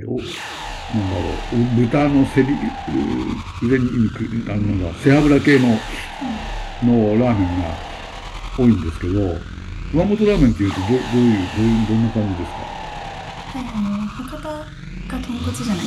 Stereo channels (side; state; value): both; identical; correlation 1.00